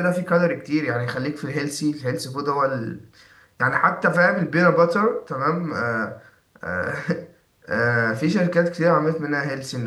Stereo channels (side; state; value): both; identical; correlation 1.00